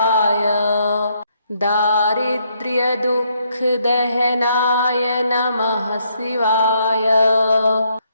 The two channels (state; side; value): inverted; both; correlation -0.73